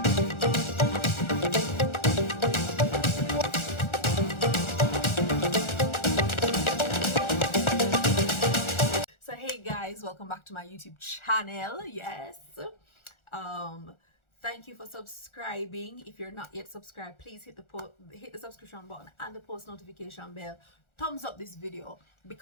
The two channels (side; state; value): right; late; 1.4 ms